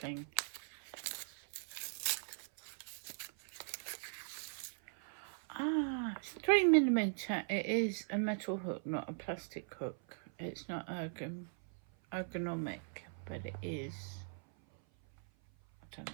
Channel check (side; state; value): left; silent; 51 dB below the other